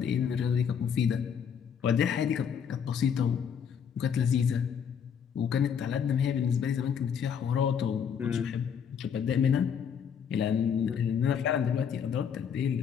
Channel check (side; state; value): right; quieter; 7.6 dB